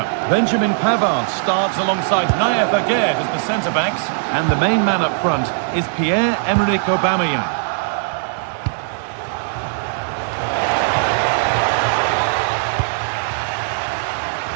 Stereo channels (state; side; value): silent; left; digital silence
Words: Benjamin Pavard starts alongside Naïef Aguerd as the centre-backs. And the main man up front is Pierre-Emerick Aubameyang.